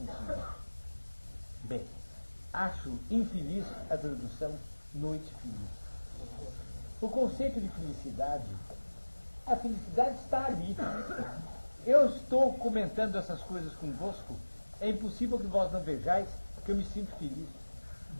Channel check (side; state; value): both; inverted; correlation -1.00